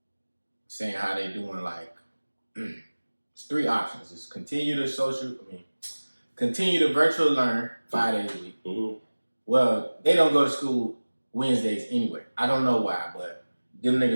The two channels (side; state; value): both; inverted; correlation -1.00